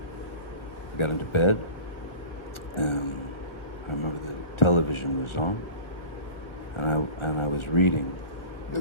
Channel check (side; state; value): right; late; 1.4 ms